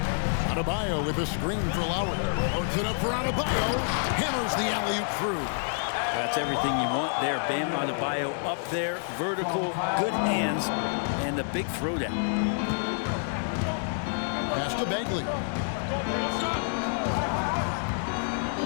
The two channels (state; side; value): silent; right; digital silence